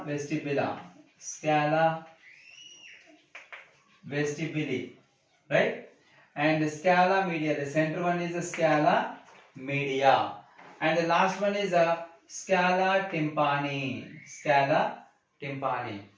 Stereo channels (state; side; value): identical; both; correlation 1.00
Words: vestibula, right? And scala media, the center one is a scala media, and the last one is a scala tympani,